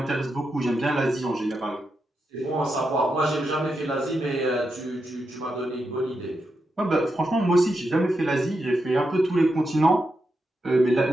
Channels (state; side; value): normal; both; correlation 0.85